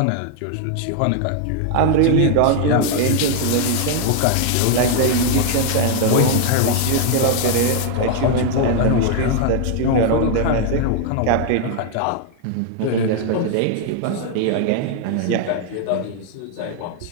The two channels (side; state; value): both; different; correlation 0.00